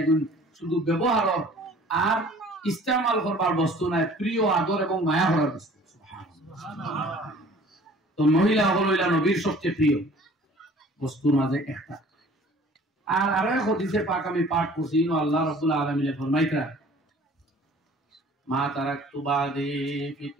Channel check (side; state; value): both; normal; correlation 0.50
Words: শুধু ব্যবহারের আর ইস্তেমাল করবার বস্তু নাই, প্রিয় আদর এবং মায়া করার বস্তু। তো মহিলা হইলা নবীর সবচেয়ে প্রিয় বস্তুর মাঝে একটা। আর আরো এক হাদিসে পাক আমি পাঠ করছি, আল্লাহ রাব্বুল আলামিন ফরমাইতা, মা তারাকতু বাদি